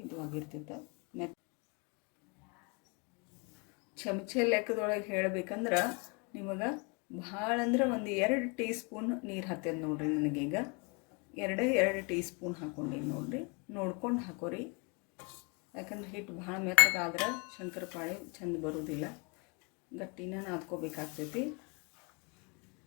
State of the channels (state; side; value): quieter; right; 32.7 dB